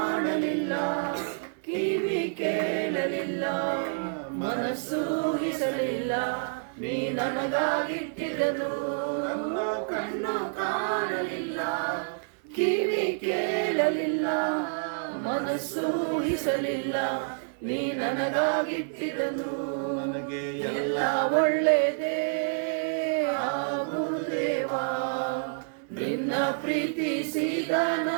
ಕಿವಿ ಕೇಳಲಿಲ್ಲ ಮನಸ್ಸು ಊಹಿಸಲಿಲ್ಲ ನೀ ನನಗಾಗಿಟ್ಟಿದ್ದನು ನನ್ನ ಕಣ್ಣು ಕಾಣಲಿಲ್ಲ ಕಿವಿ ಕೇಳಲಿಲ್ಲ ಮನಸ್ಸು ಊಹಿಸಲಿಲ್ಲ ನೀ ನನಗಾಗಿಟ್ಟಿದ್ದನು ನನಗೆ ಎಲ್ಲ ಒಳ್ಳೆಯದೇ ಆಗುವುದು ದೇವಾ ನಿನ್ನ ಪ್ರೀತಿಸಿದ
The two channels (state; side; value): silent; left; digital silence